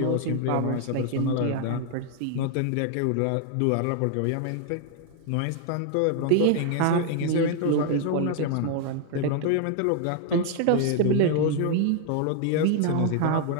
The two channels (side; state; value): both; different; correlation 0.00